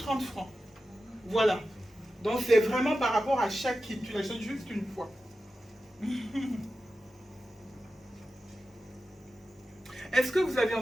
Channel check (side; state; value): both; normal; correlation 0.93